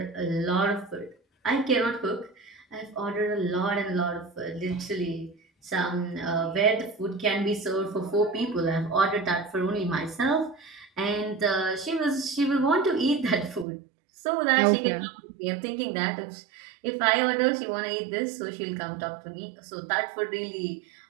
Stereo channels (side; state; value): left; drops out; at 13.7 s